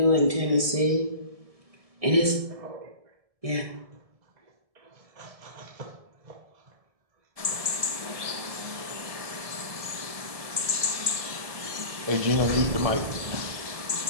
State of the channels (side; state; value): left; late; 1.7 ms